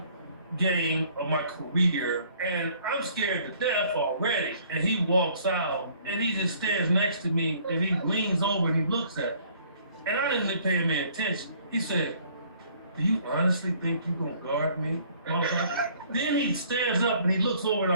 game of my career, and I'm scared to death already. And he walks out, and he just stands next to me, and he leans over and he looks at me. And I didn't pay him any attention. He said, do you honestly think you're going to guard me? Then he stands up and he looks over at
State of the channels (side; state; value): both; inverted; correlation -0.58